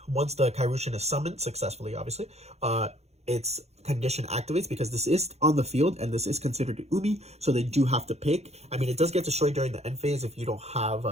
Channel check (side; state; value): left; late; 0.31 ms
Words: once the Kairyu-Shin is summoned successfully, obviously, its condition activates, because this is on the field and this is considered Umi, so they do have to pick. I mean, it does get destroyed during the end phase if you don't